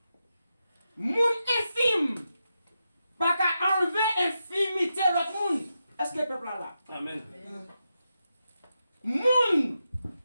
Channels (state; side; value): inverted; both; correlation -0.87